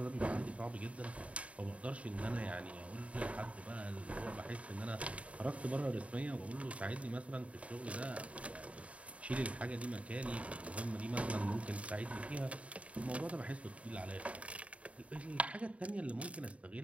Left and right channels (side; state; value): left; late; 0.065 ms